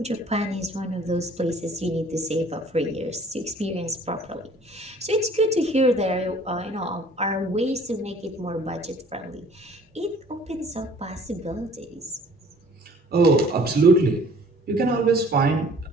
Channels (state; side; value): normal; both; correlation 0.53